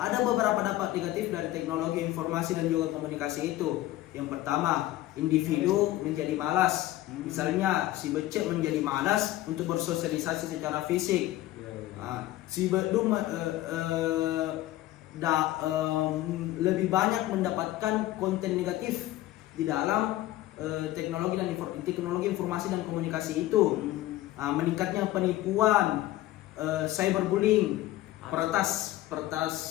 beberapa dampak negatif dari teknologi informasi dan juga komunikasi itu. Yang pertama, individu menjadi malas. Misalnya si becek menjadi malas untuk bersosialisasi secara fisik. Si bedum lebih banyak mendapatkan konten negatif di dalam teknologi informasi dan komunikasi itu. Meningkatnya penipuan, cyberbullying, peretas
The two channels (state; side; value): quieter; right; 15.5 dB